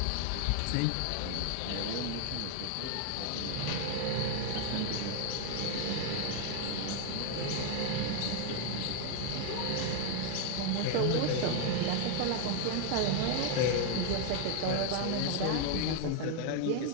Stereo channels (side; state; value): both; different; correlation 0.01